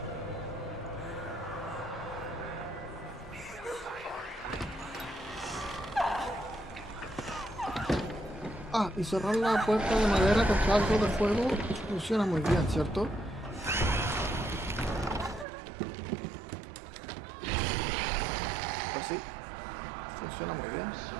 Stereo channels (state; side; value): drops out; left; at 15.5 s